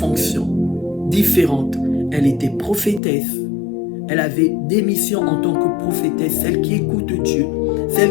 différentes. Elle était prophétesse. Elle avait des missions en tant que prophétesse, celle qui écoute Dieu,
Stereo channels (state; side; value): drops out; right; at 3.0 s